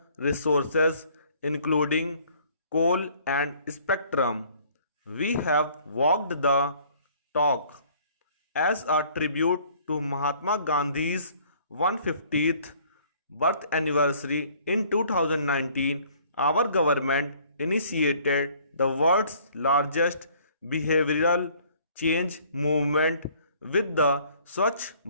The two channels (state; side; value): inverted; both; correlation -0.57